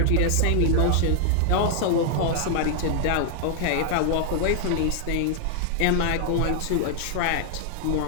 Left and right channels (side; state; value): both; different; correlation 0.00